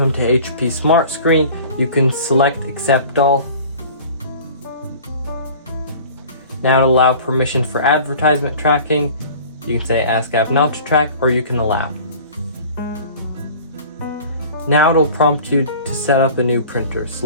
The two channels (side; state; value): both; inverted; correlation -0.43